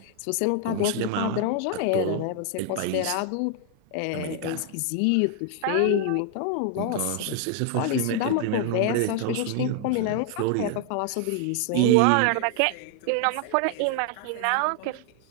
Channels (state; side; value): different; both; correlation 0.00